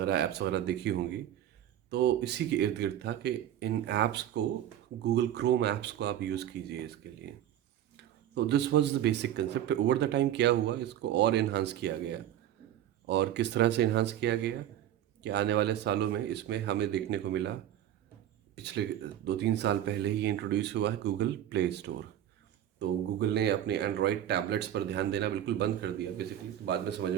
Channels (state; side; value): quieter; left; 11.5 dB